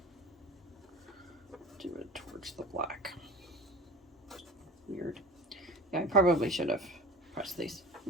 do it towards the black. Weird. Yeah, I probably should have pressed these.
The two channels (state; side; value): normal; both; correlation 0.37